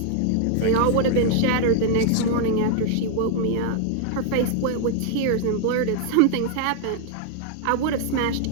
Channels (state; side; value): different; both; correlation 0.00